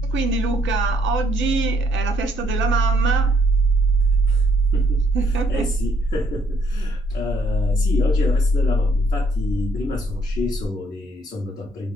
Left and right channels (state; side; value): normal; both; correlation 0.69